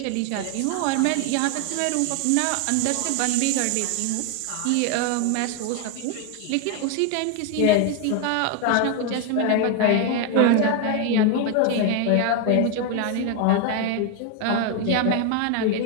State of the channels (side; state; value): both; different; correlation 0.01